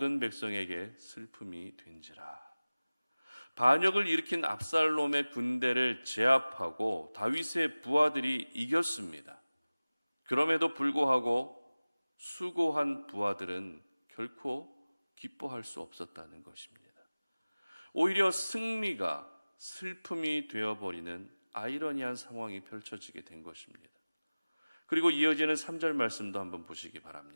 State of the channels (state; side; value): inverted; both; correlation -0.99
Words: 백성에게 슬픔이 된지라. 반역을 일으킨 압살롬의 군대를 제압하고 다윗의 부하들이 이겼습니다. 그럼에도 불구하고 수고한 부하들은 결코 기뻐할 수 없었다는 것입니다. 오히려 승리가 슬픔이 되어버리는 아이러니한 상황이 펼쳐지게 된 것입니다. 그리고 이어지는 3절 말씀도 한번 보시기